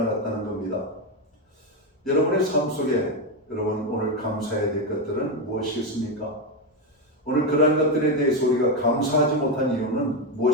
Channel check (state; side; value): normal; both; correlation 0.09